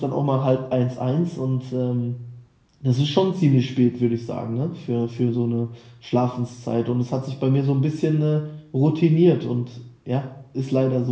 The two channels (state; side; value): identical; both; correlation 1.00